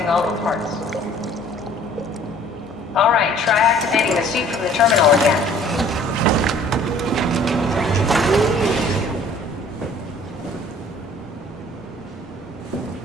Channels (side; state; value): both; normal; correlation 0.53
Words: all the parts. Alright, try activating the suit from the terminal again.